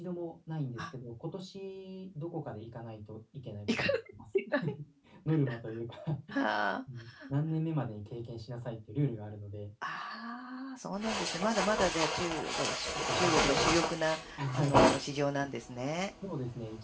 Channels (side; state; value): both; identical; correlation 1.00